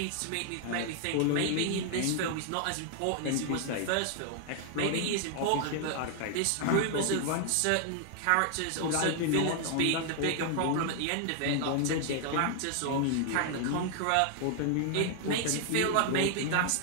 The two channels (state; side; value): different; both; correlation 0.00